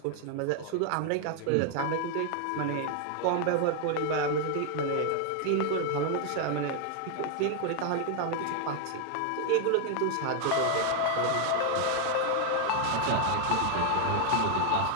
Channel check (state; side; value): different; both; correlation 0.00